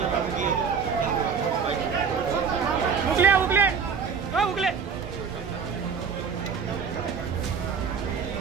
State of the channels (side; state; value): left; quieter; 6.2 dB